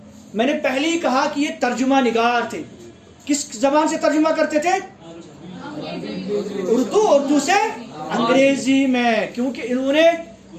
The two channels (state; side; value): identical; both; correlation 1.00